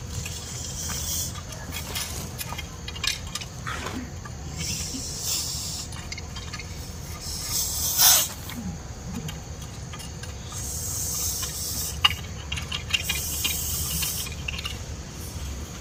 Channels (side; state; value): both; identical; correlation 1.00